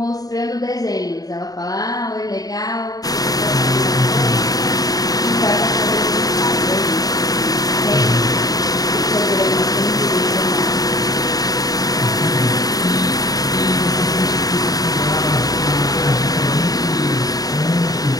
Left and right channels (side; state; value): right; late; 0.18 ms